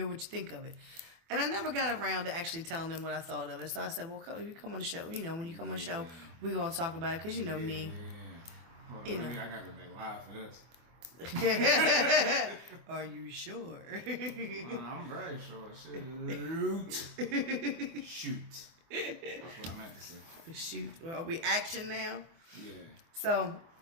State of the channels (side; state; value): left; late; 24 ms